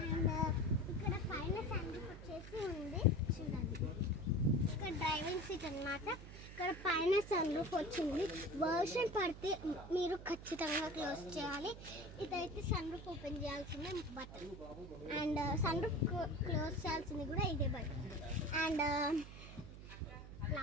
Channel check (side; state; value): right; noise; hum, 13 dB below the sound